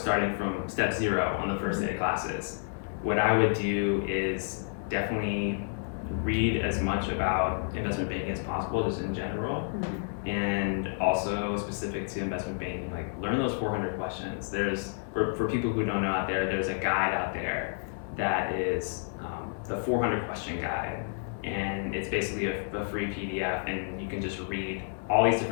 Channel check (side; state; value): right; silent; 58 dB below the other